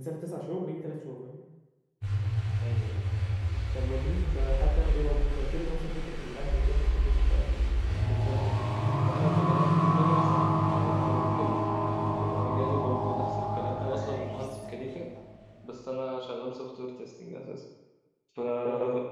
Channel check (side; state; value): both; identical; correlation 1.00